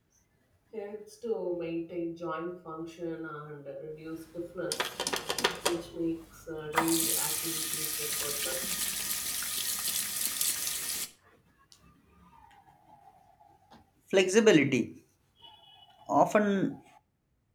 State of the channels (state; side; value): identical; both; correlation 1.00